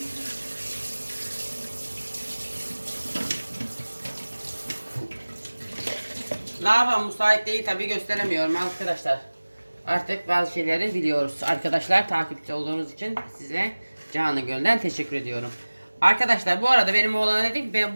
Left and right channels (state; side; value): inverted; both; correlation -1.00